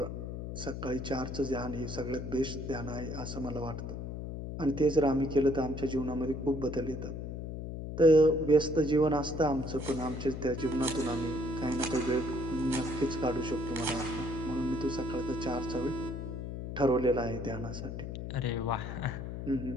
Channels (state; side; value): noise; left; hum, 6 dB below the sound